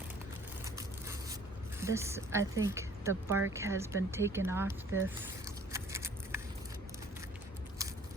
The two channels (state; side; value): normal; both; correlation 0.55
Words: This, I think the bark has been taken off this.